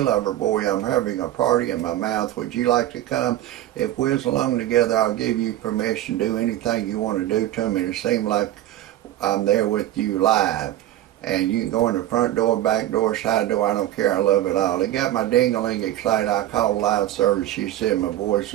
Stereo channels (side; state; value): left; quieter; 13.5 dB